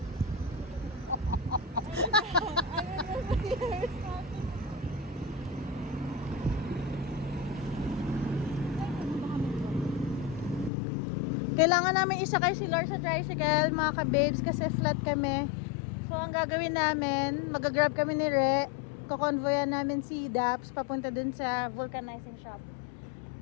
Kailangan namin isakay si Lord sa tricycle, mga ka-babes, kasi flat kami. So, ang gagawin namin, mag-grab kami ni Re, kukonvoyan namin si Daps papunta dun sa vulcanizing shop.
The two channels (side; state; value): right; drops out; at 10.7 s